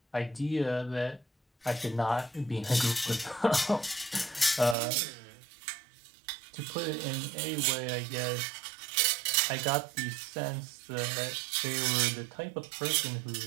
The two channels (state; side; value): drops out; left; at 4.8 s